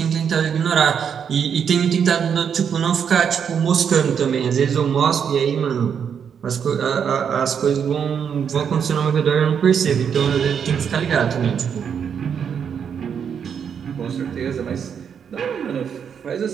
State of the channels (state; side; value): quieter; left; 7.5 dB